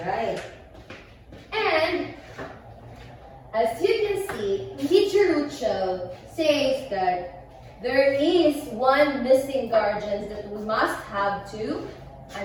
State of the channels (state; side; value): identical; both; correlation 1.00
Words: And as you can see, Teacher Lucho says that there is one missing guardian that we must have to